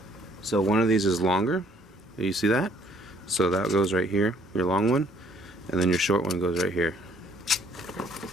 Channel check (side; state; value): both; normal; correlation 0.62